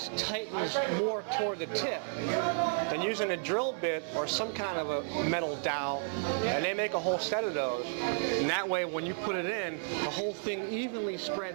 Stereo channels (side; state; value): left; silent; digital silence